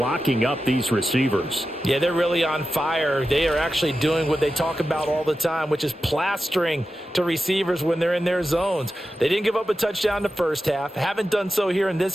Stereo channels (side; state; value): both; normal; correlation 0.92